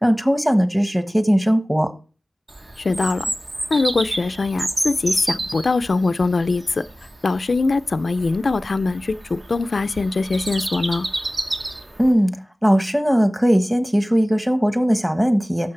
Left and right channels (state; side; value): normal; both; correlation 0.97